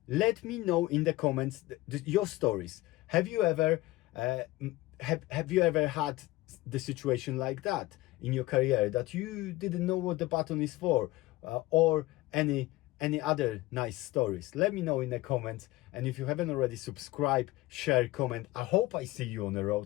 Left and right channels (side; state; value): right; quieter; 18.6 dB